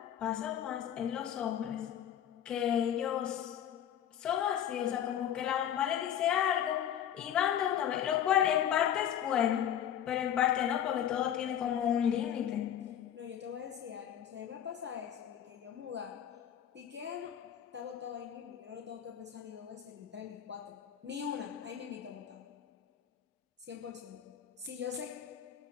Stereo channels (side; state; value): right; quieter; 9.9 dB